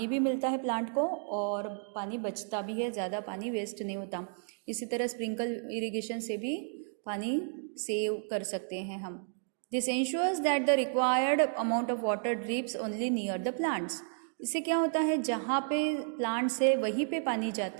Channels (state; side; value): silent; left; 56 dB below the other